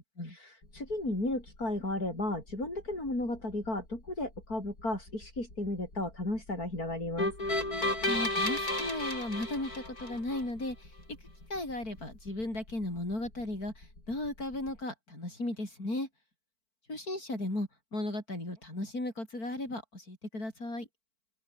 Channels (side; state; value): right; late; 4.5 ms